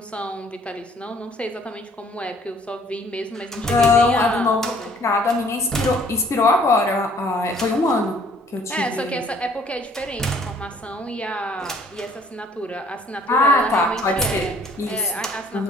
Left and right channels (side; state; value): both; normal; correlation 0.58